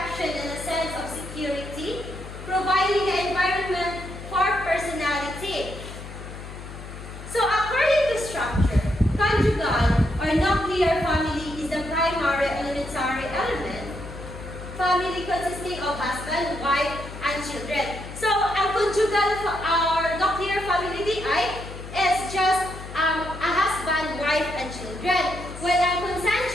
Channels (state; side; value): noise; left; hum, 12 dB below the sound